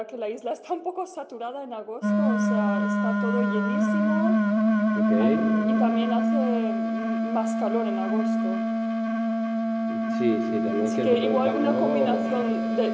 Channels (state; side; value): identical; both; correlation 1.00